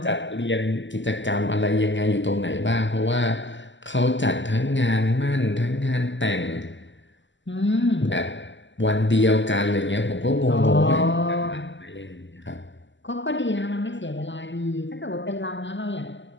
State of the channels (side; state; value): right; late; 0.54 ms